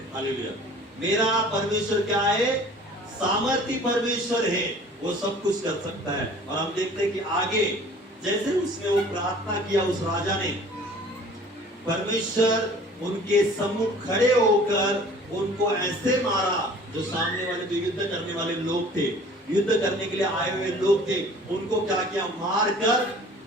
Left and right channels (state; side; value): normal; both; correlation 0.49